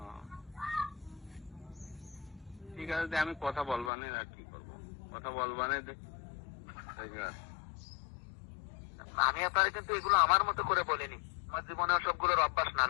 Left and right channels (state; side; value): drops out; right; at 3.9 s